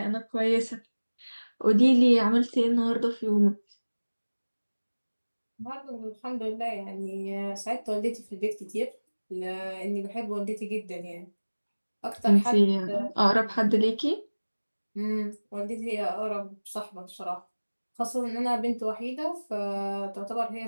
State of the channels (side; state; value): both; inverted; correlation -1.00